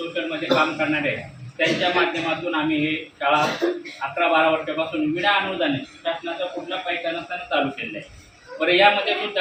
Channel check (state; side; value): identical; both; correlation 1.00